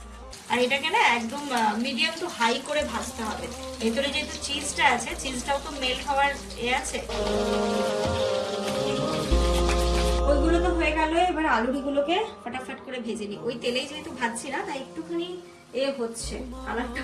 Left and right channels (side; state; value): both; identical; correlation 1.00